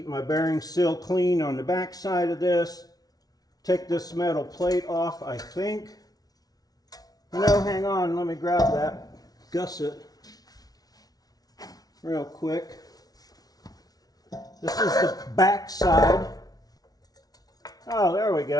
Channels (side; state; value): right; late; 0.18 ms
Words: my bearing seal clean on the back side of this. Take this metal plate off, I think. No, hang on. Let me grab that gusset real quick. This is the back side. Oh, there we